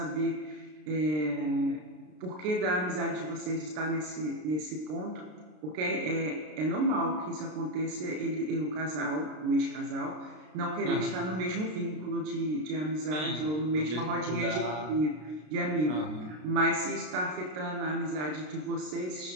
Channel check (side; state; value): left; late; 33 ms